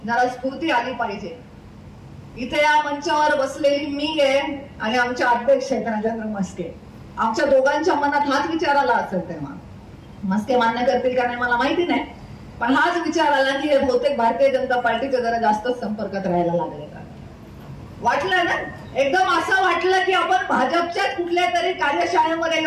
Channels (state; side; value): identical; both; correlation 1.00